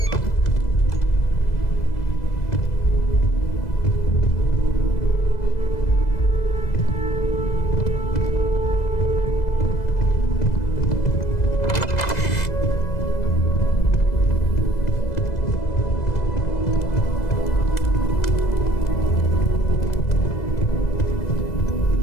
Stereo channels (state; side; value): late; right; 2.0 ms